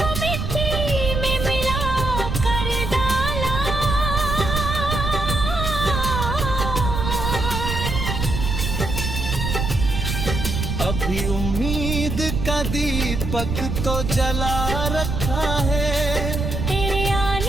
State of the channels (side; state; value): right; noise; rumble, 2 dB below the sound